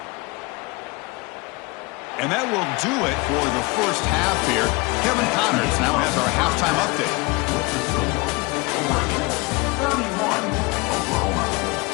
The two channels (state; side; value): quieter; right; 26.2 dB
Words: And that will do it for the first half here. Kevin Connors now has our halftime update. With the score, Oregon 31, Oklahoma